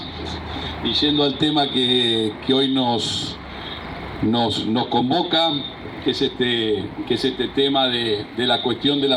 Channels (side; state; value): both; identical; correlation 1.00